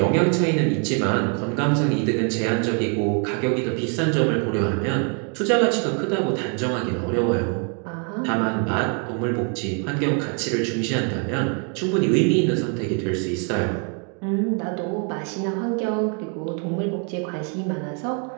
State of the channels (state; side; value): quieter; left; 39.6 dB